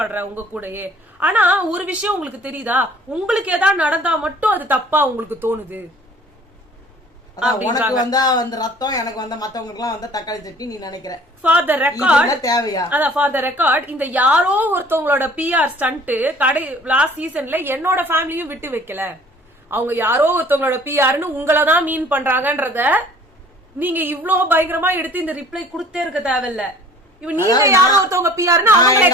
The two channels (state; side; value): normal; both; correlation 0.51